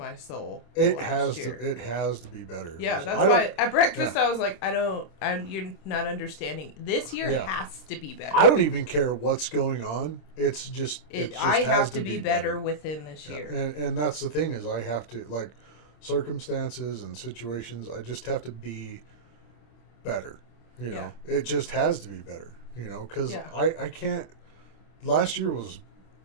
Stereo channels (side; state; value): right; late; 26 ms